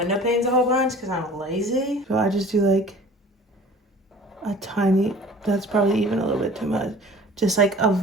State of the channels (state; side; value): normal; both; correlation 0.46